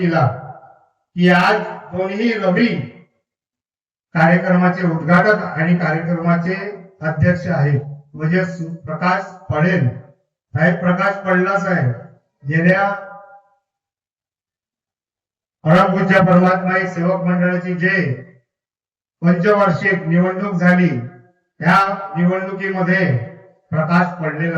की आज कोणीही रवी कार्यक्रमाचे उद्घाटक आणि कार्यक्रमाचे अध्यक्ष आहेत म्हणजे प्रकाश पडेल साहेब. प्रकाश पडला साहेब गेल्या परमपूज्य परमात्मा सेवक मंडळाची जे पंचवार्षिक निवडणूक झाली त्या निवडणुकीमध्ये प्रकाश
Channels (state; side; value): identical; both; correlation 1.00